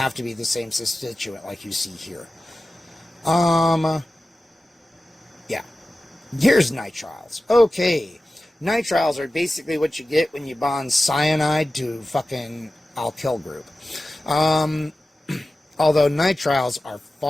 to be the same substituent like you see here. Yeah. Here's nitriles. Okay. Nitriles are basically what you get when you bond cyanide to fucking alkyl group. Although nitriles are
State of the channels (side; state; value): both; normal; correlation 0.95